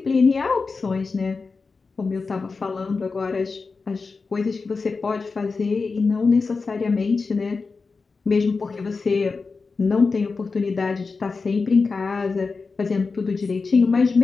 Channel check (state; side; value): quieter; right; 4.4 dB